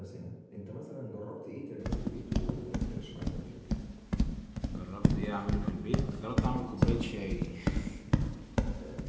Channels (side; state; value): both; identical; correlation 1.00